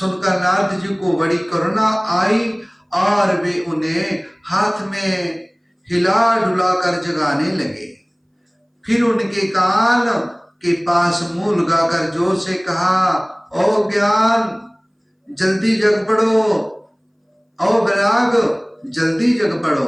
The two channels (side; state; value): both; identical; correlation 1.00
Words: नारद जी को बड़ी करुणा आई और वे उन्हें हाथ में हिला डुला कर जगाने लगे। फिर उनके कान के पास मुंह लगाकर जोर से कहा, ओ ज्ञान जल्दी जग पड़ो, ओ वैराग जल्दी जग पड़ो।